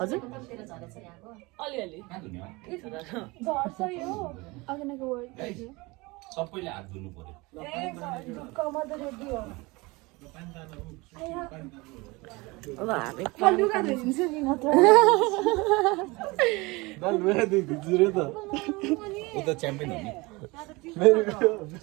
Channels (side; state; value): left; quieter; 24.0 dB